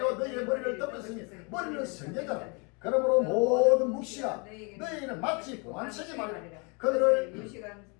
너희의 머리를 덮었으니 머리는 선지자라. 그러므로 모든 묵시가 너희는 마치 보안책이 말이라.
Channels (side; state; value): right; quieter; 32.4 dB